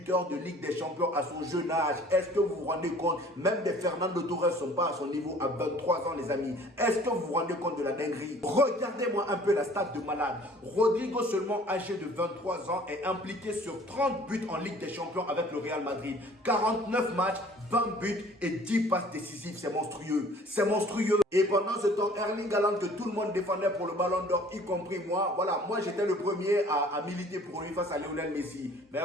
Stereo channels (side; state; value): both; normal; correlation 0.52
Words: de Ligue des Champions à son jeune âge. Est-ce que vous vous rendez compte? Même des Fernando Torres ne sont pas à son niveau à 23 ans, les amis. Est-ce que vous vous rendez compte de la dinguerie? Regardez-moi un peu la stat de malade. Rodrigo, seulement âgé de 23 ans, est impliqué sur 30 buts en Ligue des Champions avec le Real Madrid. 49 matchs, 20 buts et 10 passes décisives. C'est monstrueux. C'est monstrueux. Et pendant ce temps, Erling Haaland, que tout le monde défendait pour le Ballon d'Or, y compris moi, voilà, moi j'étais le premier à militer pour lui face à Lionel Messi. Mais